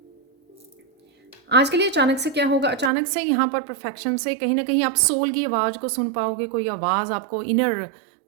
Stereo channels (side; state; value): left; drops out; at 2.9 s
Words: आज के लिए अचानक से क्या होगा, अचानक से यहाँ पर परफेक्शन से कहीं ना कहीं आप सोल की आवाज़ को सुन पाओगे। कोई आवाज़ आपको, इनर